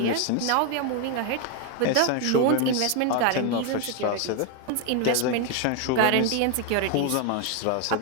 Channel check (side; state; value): both; different; correlation 0.01